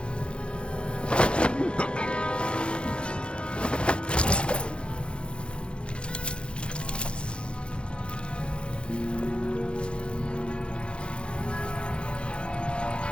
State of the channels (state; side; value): late; right; 0.056 ms